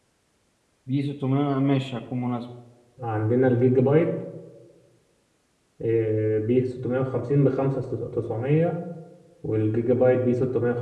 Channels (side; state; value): both; identical; correlation 1.00